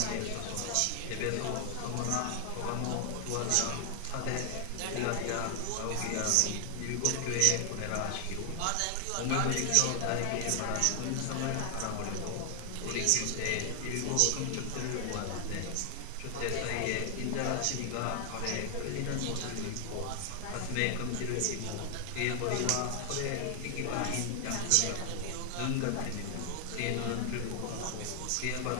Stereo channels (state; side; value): different; both; correlation 0.00